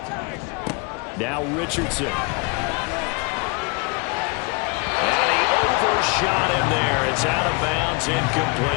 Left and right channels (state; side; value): quieter; right; 29.5 dB